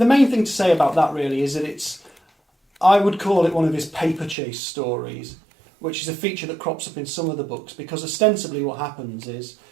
main thing to say about that really is that I would call it one of his paper chase stories, which is a feature that crops up in some of the books, because ostensibly what happens is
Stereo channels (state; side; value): drops out; left; at 4.4 s